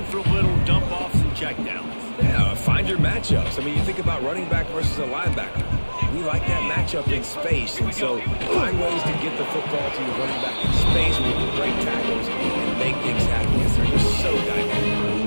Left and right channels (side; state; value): both; inverted; correlation -1.00